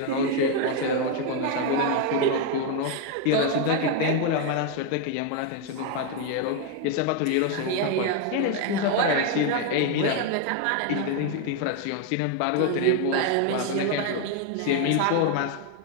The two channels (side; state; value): both; different; correlation 0.01